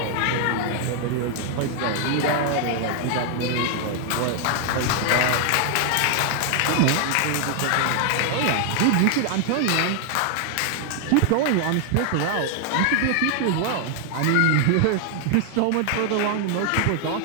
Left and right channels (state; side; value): different; both; correlation 0.00